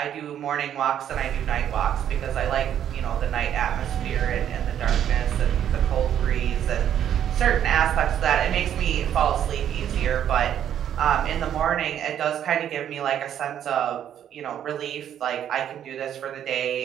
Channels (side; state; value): left; quieter; 10.0 dB